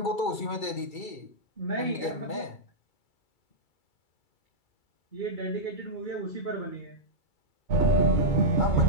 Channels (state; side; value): late; right; 2.3 ms